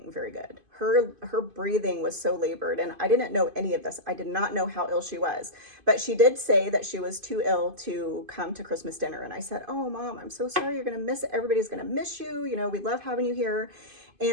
very good. Her breathing was so labored, and I didn't know any of this. I did not know how ill she was, but she did say that she was too ill to come to Christmas dinner. And I said, "Oh, mom, I'm so sorry. You're going to miss it. Everybody's going to miss you. We love having you here."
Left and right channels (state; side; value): late; left; 2.5 ms